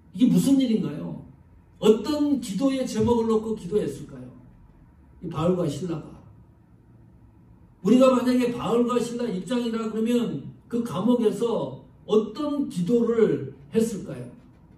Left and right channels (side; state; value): both; identical; correlation 1.00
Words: 이게 무슨 일인가요? 어떤 기도의 제목을 놓고 기도했을까요? 이 바울과 실라가. 우리가 만약에 바울과 실라 입장이라 그러면 그 감옥에서 어떤 기도를 했을까요?